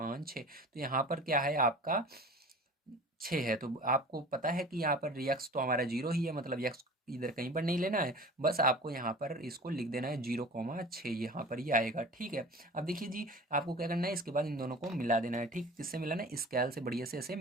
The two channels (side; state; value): both; normal; correlation 0.40